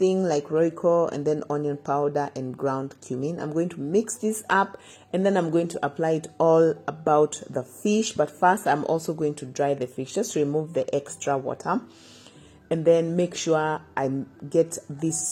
like Royco, and then onion powder and ground cumin. I'm going to mix this up, and then I'm going to apply it all about the fish. But first, I'm also going to dry the fish, just to remove the extra water. And then make sure I get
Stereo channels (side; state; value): both; identical; correlation 1.00